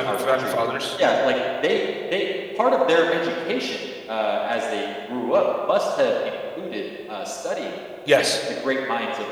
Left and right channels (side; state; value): both; identical; correlation 1.00